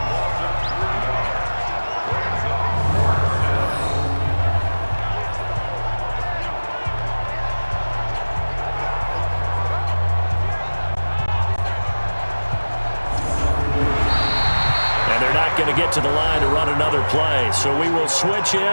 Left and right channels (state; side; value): inverted; both; correlation -1.00